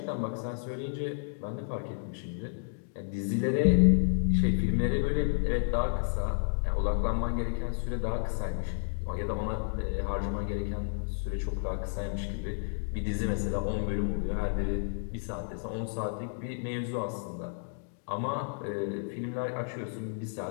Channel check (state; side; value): silent; right; digital silence